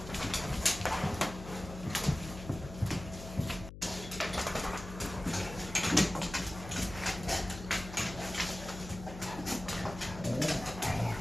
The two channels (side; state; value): left; noise; hum, 12 dB below the sound